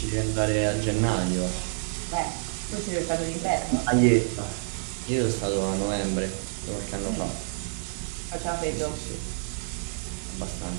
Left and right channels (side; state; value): left; silent; digital silence